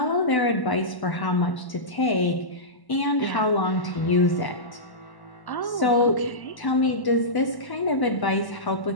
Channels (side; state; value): right; late; 1.1 ms